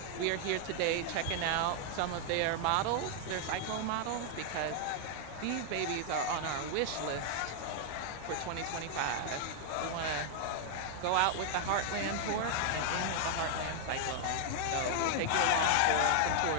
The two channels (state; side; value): different; both; correlation -0.01